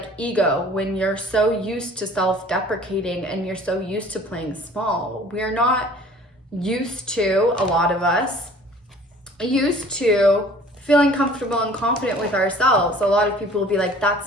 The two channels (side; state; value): both; normal; correlation 0.50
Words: ego when you're so used to self-deprecating and you're so used to playing small. We're not used to, a lot of us, used to feeling comfortable and confident with ourselves. A lot of people will be like,